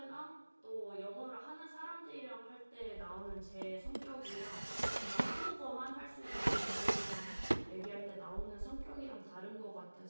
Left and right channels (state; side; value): inverted; both; correlation -1.00